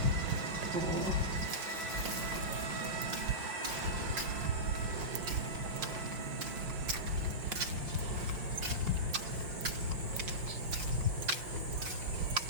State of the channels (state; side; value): late; left; 5.6 ms